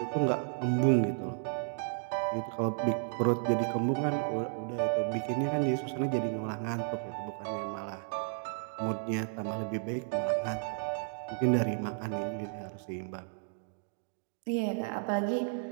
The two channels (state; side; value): silent; left; digital silence